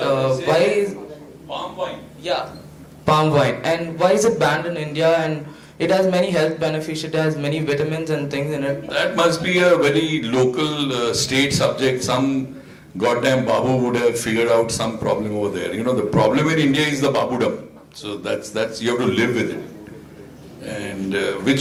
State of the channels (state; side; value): identical; both; correlation 1.00